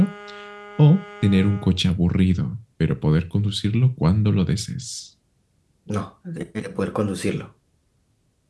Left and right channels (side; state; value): both; identical; correlation 1.00